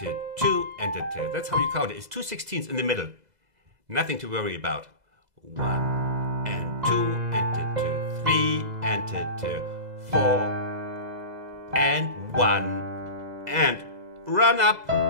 2 and the 2. That's how you count it. It's 2 16ths in the middle. Nothing to worry about. 1 and 2 and the 2, 3 and the 2, 4 and 1 and run up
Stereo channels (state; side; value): late; left; 2.0 ms